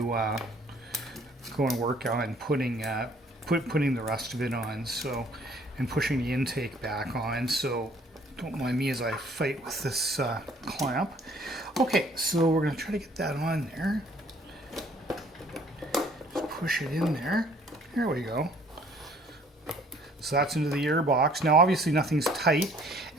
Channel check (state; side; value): normal; both; correlation 0.58